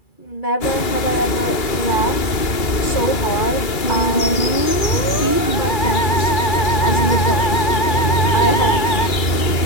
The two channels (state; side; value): late; right; 2.3 ms